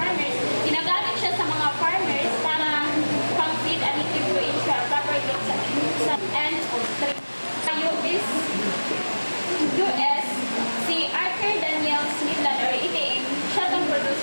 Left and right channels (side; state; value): both; inverted; correlation -1.00